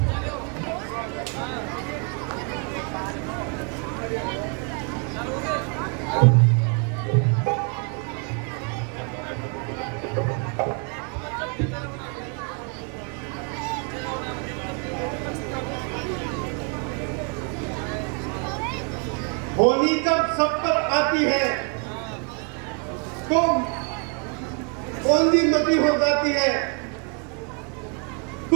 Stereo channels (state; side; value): quieter; left; 38.2 dB